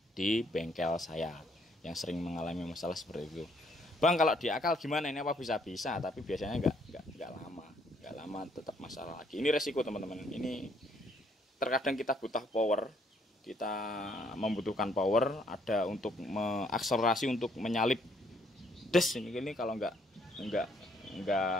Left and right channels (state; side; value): normal; both; correlation 0.68